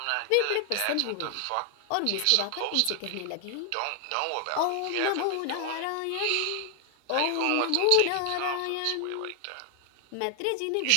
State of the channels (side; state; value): both; different; correlation 0.00